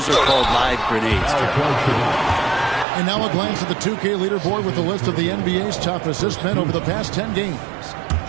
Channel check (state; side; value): drops out; left; at 2.9 s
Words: are called live grenades. And now a glance at the 2K leaderboard with a list of the NBA's top assist men over the past 10 games.